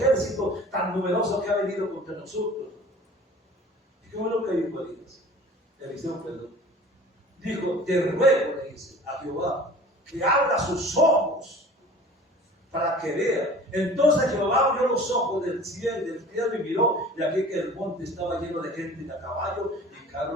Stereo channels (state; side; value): normal; both; correlation 0.44